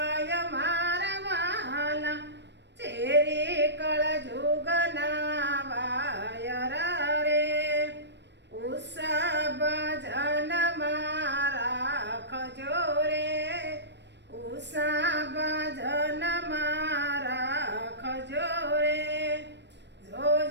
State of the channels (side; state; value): left; late; 0.51 ms